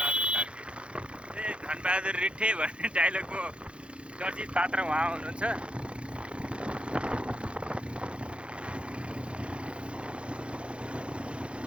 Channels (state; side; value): late; left; 0.058 ms